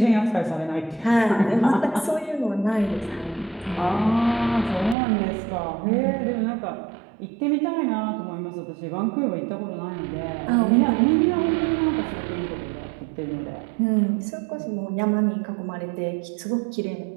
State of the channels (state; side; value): drops out; left; at 5.0 s